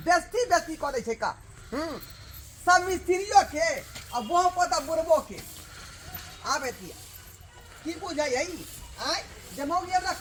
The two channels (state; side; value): identical; both; correlation 1.00